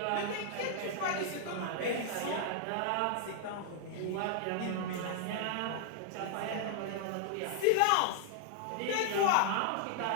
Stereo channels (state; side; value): different; both; correlation -0.01